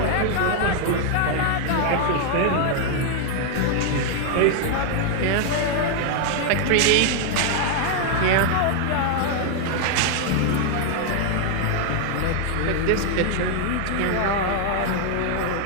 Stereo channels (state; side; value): different; both; correlation 0.00